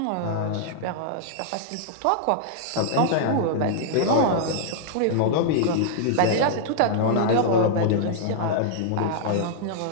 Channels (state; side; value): different; both; correlation -0.01